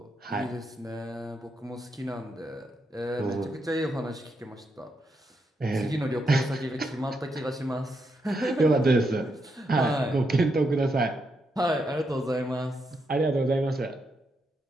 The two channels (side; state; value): both; normal; correlation 0.81